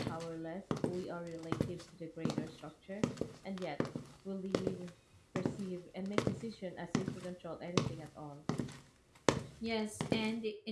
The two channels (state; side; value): identical; both; correlation 1.00